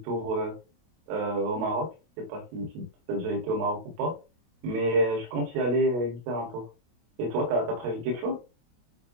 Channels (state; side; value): late; left; 25 ms